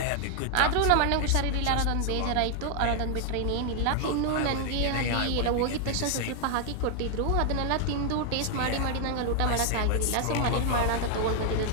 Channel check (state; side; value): different; both; correlation 0.00